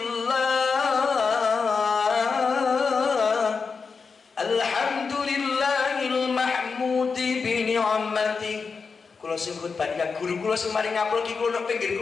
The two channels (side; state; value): right; quieter; 5.1 dB